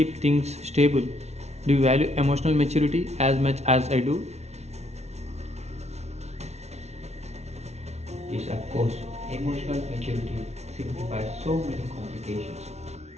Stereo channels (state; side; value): late; left; 0.32 ms